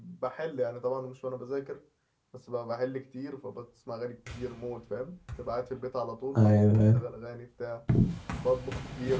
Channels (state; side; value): identical; both; correlation 1.00